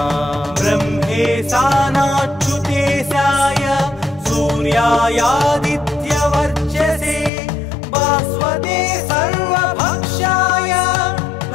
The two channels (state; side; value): drops out; right; at 7.3 s